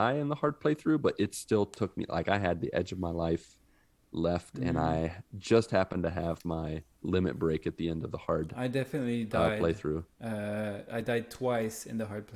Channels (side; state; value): both; identical; correlation 1.00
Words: in the hard playthrough, but it still took me, like I had the edge of my life left, and I just happened to have my limit break at the end of the hard. I definitely died playthrough. I died twice in the hard